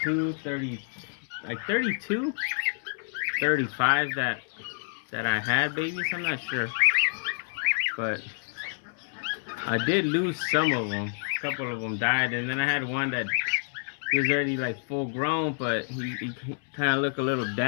30, like 32, 35 that I had babies. I'm not sure, but I did lose some of them. A couple of them died, and then I had one that he was already like full grown, but he kind of looked a little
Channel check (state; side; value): silent; right; 59 dB below the other